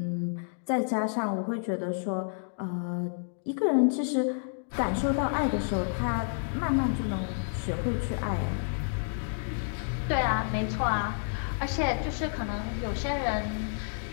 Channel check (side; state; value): right; silent; digital silence